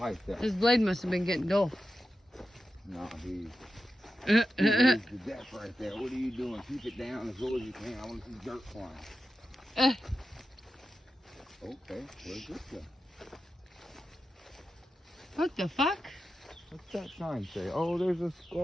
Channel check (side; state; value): both; normal; correlation 0.91